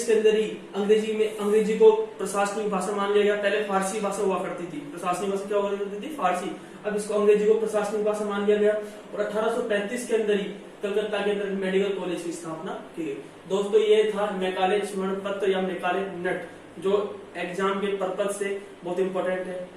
के अंदर ही अंग्रेजी को प्रशासनिक भाषा मान लिया गया। पहले फारसी भाषा हुआ करती थी, प्रशासनिक भाषा क्या हुआ करती थी? फारसी। अब इसको अंग्रेजी को प्रशासनिक भाषा मान लिया गया और 1835 के अंदर ही कलकत्ता के अंदर मेडिकल कॉलेज की स्थापना की गई। दोस्तों ये था मैकाले स्मरण पत्र या मैकाले नट, जो एग्जाम के पर्पज से बहुत इंपॉर्टेंट है।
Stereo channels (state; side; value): identical; both; correlation 1.00